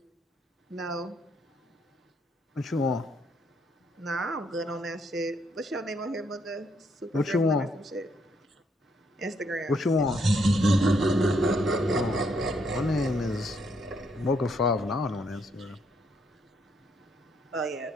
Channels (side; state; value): both; normal; correlation 0.73